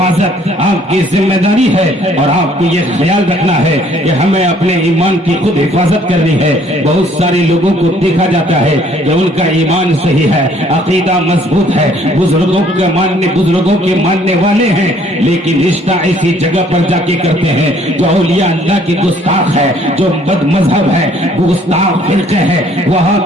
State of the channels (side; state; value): both; normal; correlation 0.60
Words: آپ کی ذمہ داری ہے، اور آپ کو یہ خیال رکھنا ہے کہ ہمیں اپنے ایمان کی خود حفاظت کرنی ہے۔ بہت سارے لوگوں کو دیکھا جاتا ہے کہ ان کا ایمان صحیح ہے، عقیدہ مضبوط ہے، بزرگوں کے ماننے والے ہیں، لیکن رشتہ ایسی جگہ پر جا کے کرتے ہیں جو اولیاء اللہ کی گستاخ ہے، جو بد مذہب ہے، گستاخ فرقے ہے، وہاں